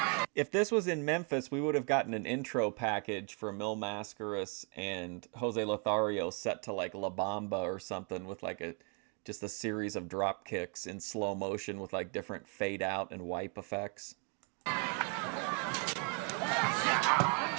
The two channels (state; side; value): quieter; left; 35.7 dB